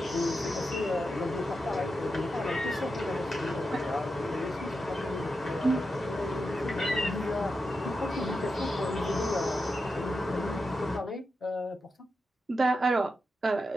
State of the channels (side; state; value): both; normal; correlation 0.88